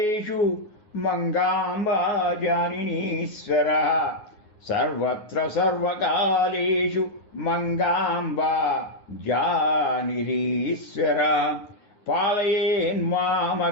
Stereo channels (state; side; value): late; right; 9.5 ms